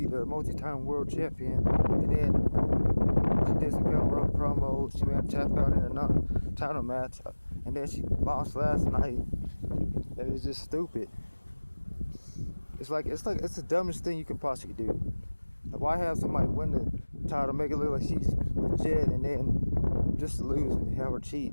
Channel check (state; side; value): inverted; both; correlation -1.00